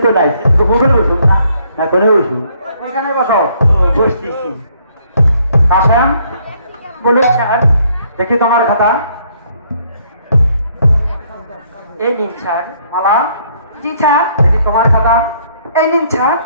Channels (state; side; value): inverted; both; correlation -0.66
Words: তো নাই কোথায় বসুন না কোনে বসু এখানে বসো বসতেছি আসেন বলুন স্যার দেখি তোমার খাতা এই নিন স্যার মালা জি স্যার দেখি তোমার খাতা এই নিন স্যার